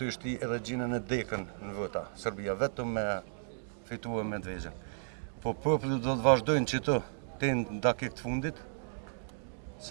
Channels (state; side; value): silent; left; digital silence